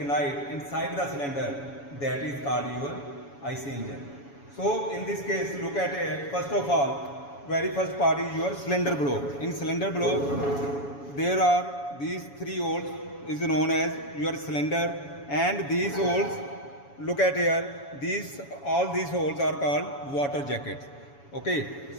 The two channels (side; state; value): right; late; 7.1 ms